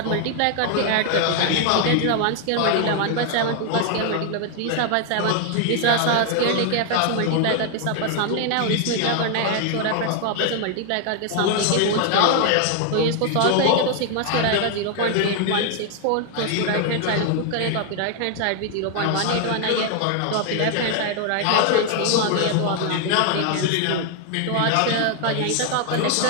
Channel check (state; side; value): different; both; correlation 0.00